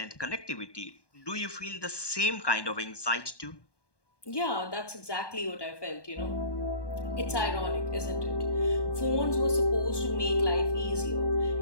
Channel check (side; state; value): right; late; 1.2 ms